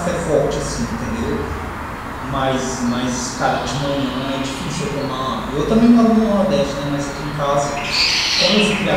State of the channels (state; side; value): identical; both; correlation 1.00